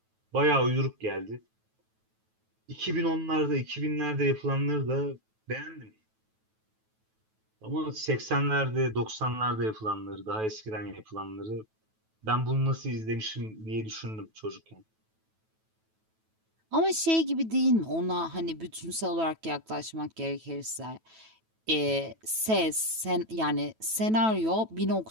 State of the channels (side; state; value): left; late; 9.2 ms